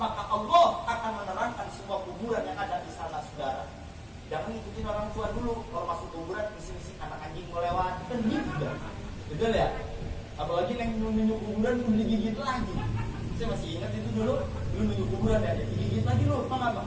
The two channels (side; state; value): both; identical; correlation 1.00